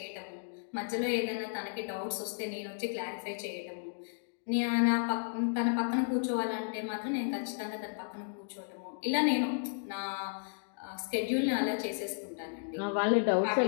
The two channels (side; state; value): right; silent; digital silence